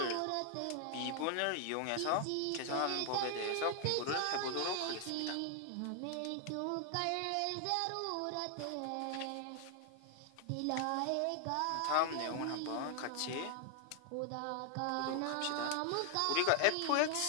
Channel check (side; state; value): both; different; correlation 0.00